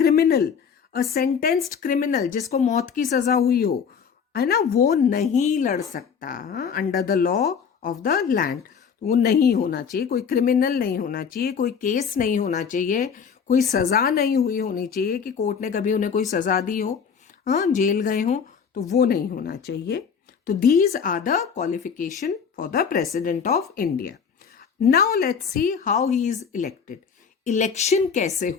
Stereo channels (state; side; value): quieter; right; 6.6 dB